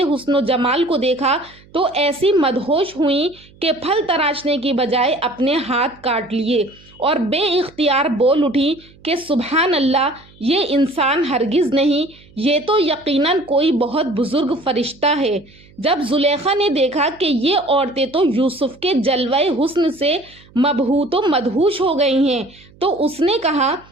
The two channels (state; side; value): noise; right; hum, 26 dB below the sound